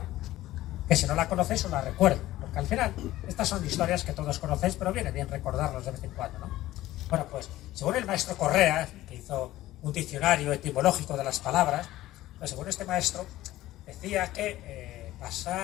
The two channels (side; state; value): right; quieter; 15.6 dB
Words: que si no la conocéis os la recuerdo, porque al final estas son historias que todos conocéis, pero viene bien recordarlos de vez en cuando, ¿no? Bueno, pues según el maestro Correa, que hizo un diccionario etimológico de las palabras, pues según este maestro decía que